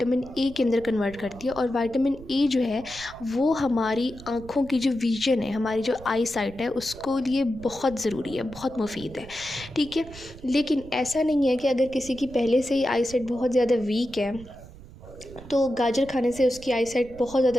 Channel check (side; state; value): right; noise; rumble, 18 dB below the sound